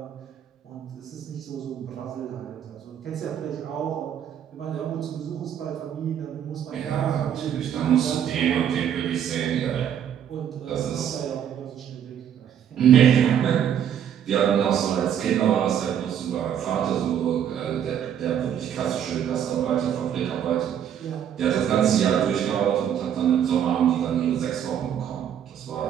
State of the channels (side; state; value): left; quieter; 9.3 dB